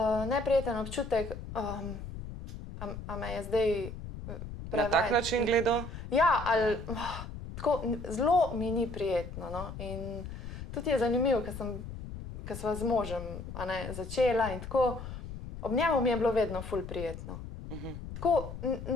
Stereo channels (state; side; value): noise; left; rumble, 9 dB below the sound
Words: neprijeten občutek, a me je zdaj Na tak način gledal? Ja, ali tako, zelo mi ni prijetno. No? In tudi je zanimivo, ker sva z možem začela in tako, ob njemu mi je bilo vedno ful prijetno. Tako